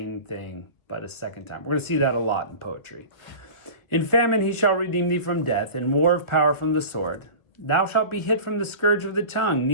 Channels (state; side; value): late; right; 1.6 ms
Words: thing, but a second time. We're going to see that a lot in poetry. In famine he shall redeem thee from death, in war of power from the sword. Thou shalt be hid from the scourge of the tongue,